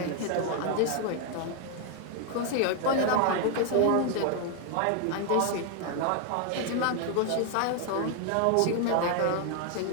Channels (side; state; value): both; different; correlation 0.00